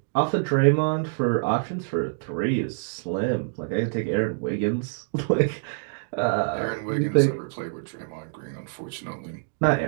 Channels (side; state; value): left; silent; digital silence